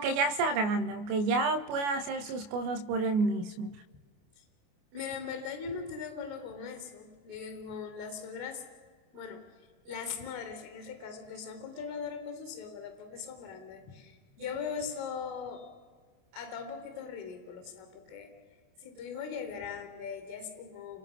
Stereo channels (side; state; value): left; late; 28 ms